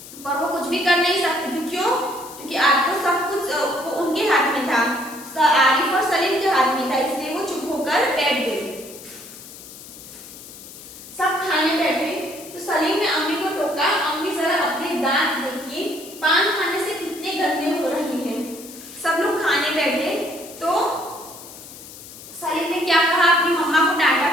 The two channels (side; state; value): left; noise; hiss, 16 dB below the sound